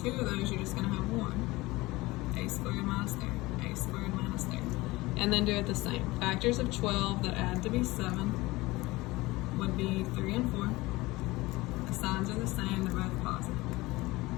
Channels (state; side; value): quieter; right; 20.7 dB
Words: 2 of those, you're just gonna have 1. A squared minus 3, A squared minus 3. And then do it the same. Factors of 12 that add to be 7 would be 3 and 4. The signs are the same, they're both positive.